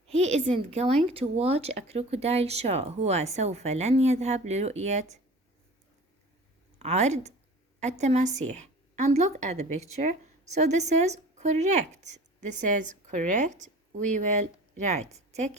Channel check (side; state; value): both; normal; correlation 0.41